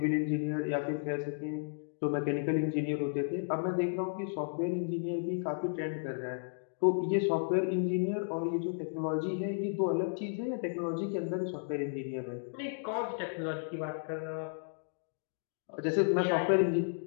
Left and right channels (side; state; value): right; silent; digital silence